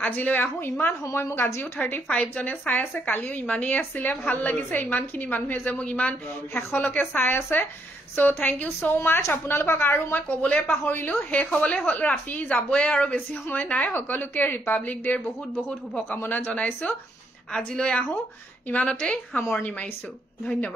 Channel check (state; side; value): normal; both; correlation 0.74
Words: আজিলৈ আহো ইমান সময় মোক আজিও 35 জনে চাই আছে কালিও ইমানেই আছিল ভাল লাগিছে ইমানখিনি মানুহে যে মোক ইমান হেখলকে চাই আছে সো থ্যাংক ইউ সো মাচ আপোনালোকক আৰু মই কবলে পাহৰিলো শেষ হবলে ৰাতি যাবয়ে আৰু বেছি সময় নাই সকলোকে ৰিপাব্লিক ডেৰ বহুত বহুত শুভকামনা জনাইছো আজিলৈ আহো ইমানতে সামৰণি মাৰিছো